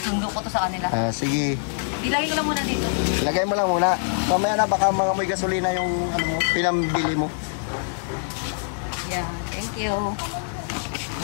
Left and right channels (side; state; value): right; silent; 62 dB below the other